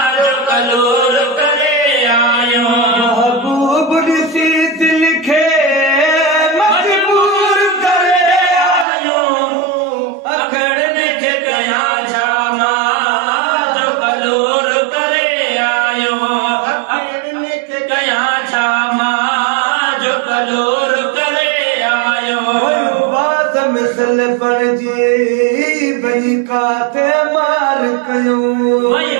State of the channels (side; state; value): left; drops out; at 8.8 s